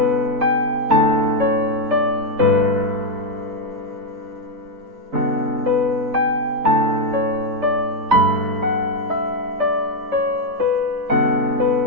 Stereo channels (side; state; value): left; late; 4.0 ms